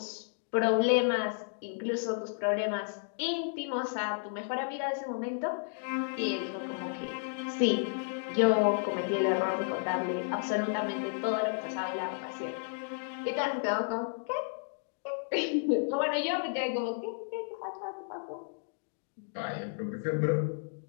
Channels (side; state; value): right; silent; digital silence